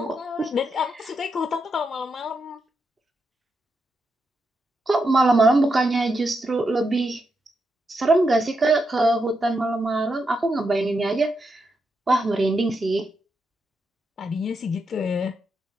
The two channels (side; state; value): both; normal; correlation 0.84